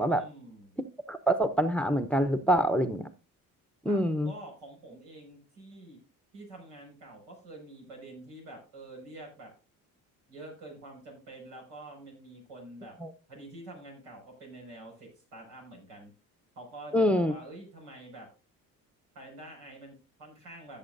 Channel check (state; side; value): normal; both; correlation 0.68